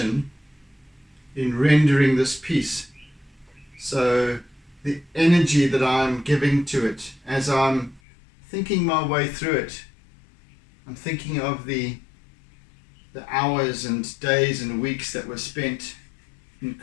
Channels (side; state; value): right; drops out; at 8.0 s